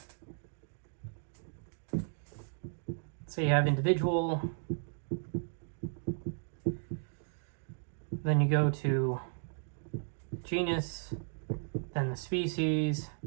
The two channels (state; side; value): silent; left; digital silence